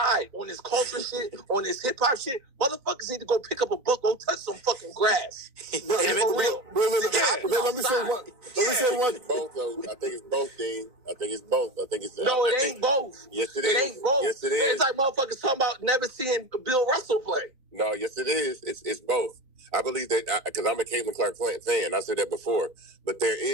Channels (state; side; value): late; left; 3.9 ms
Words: on this culture shit, on this hip hop shit. Motherfuckers need to go pick up a book, go touch some fucking grass. Let me say one. Both though. I think it's both, Dean. I think it's both. No, it ain't both. Yes, it is. It ain't both. Yes, it is. It's like motherfuckers talking about never seeing Bill Russell play. No, yes, it is. It's both. I believe that because I'm a Caitlin Clark fan. I said that before, but there